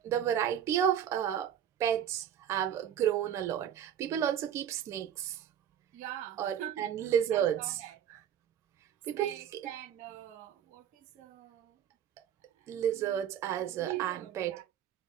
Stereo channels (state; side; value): quieter; left; 9.7 dB